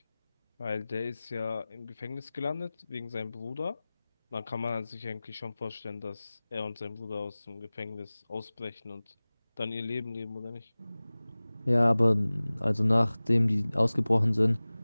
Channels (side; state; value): both; inverted; correlation -0.99